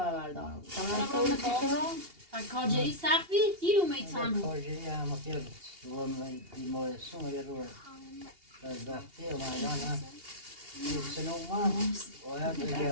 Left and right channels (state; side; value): late; left; 2.8 ms